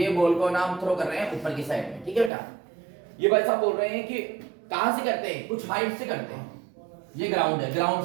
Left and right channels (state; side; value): drops out; left; at 2.3 s